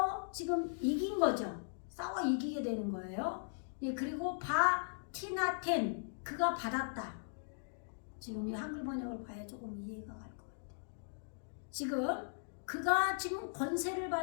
지금 이긴 거죠. 싸워 이기게 되는 거예요. 예, 그리고 바티나텐 그가 받았다. 지금 이 한글 번역을 봐야 조금 이해가 갈 것 같아요. 지금 그가 지금 권세를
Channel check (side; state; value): right; silent; digital silence